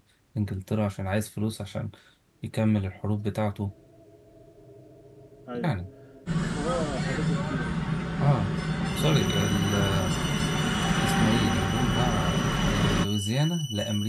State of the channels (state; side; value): identical; both; correlation 1.00